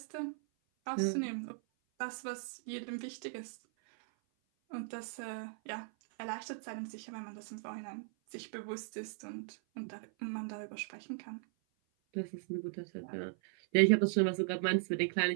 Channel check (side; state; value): left; silent; 53 dB below the other